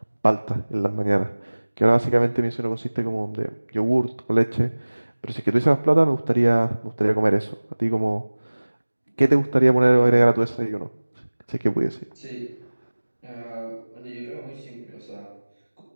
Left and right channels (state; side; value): inverted; both; correlation -1.00